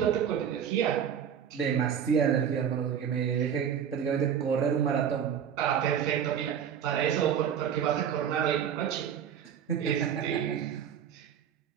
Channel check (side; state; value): left; quieter; 8.5 dB